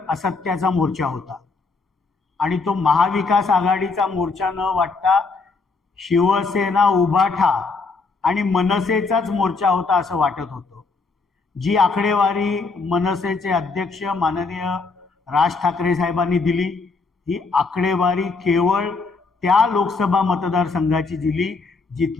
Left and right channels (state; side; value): quieter; right; 4.2 dB